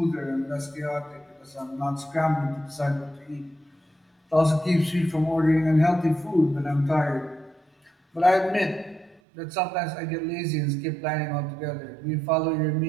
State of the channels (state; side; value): drops out; left; at 9.2 s